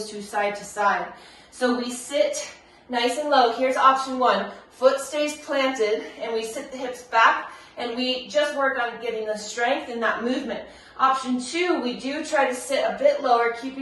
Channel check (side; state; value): both; identical; correlation 1.00